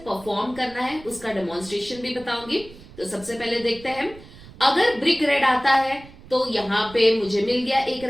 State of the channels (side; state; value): right; noise; rumble, 19 dB below the sound